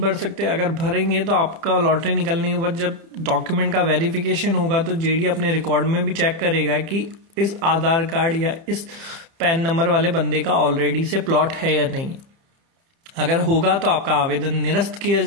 सकते। अगर भरेंगे तो आपका लॉटरी निकलने के बाद जब डॉक्यूमेंट का वेरिफिकेशन होगा तो जेडीए अपने रिकॉर्ड में भी चेक करेगा कि इस आधार कार्ड या इस पैन नंबर वाले बंदे का ऑलरेडी से प्लॉट है या नहीं। अगर होगा तो आपका आवेदन निरस्त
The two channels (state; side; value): late; left; 30 ms